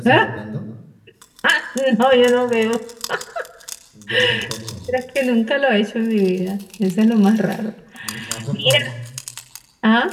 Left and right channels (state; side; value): identical; both; correlation 1.00